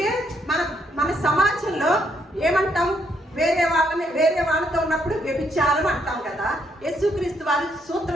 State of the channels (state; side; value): normal; both; correlation 0.73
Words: మన సమాజంలో ఏమంటాం? వేరే వాళ్ళతో ఉన్నప్పుడు వ్యభిచారం అంటాం కదా. యేసుక్రీస్తు వారు